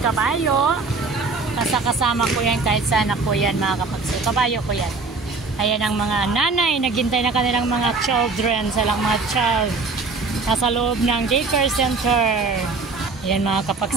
kabayo. Kasama ko yan kahit saan ako yan, mga kapagsew. Kabayo ko yan. Ayan ang mga nanay, naghintay na kanilang mga children, silang mga child. Nasa loob ng daycare center. Ayan mga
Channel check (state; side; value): quieter; left; 4.1 dB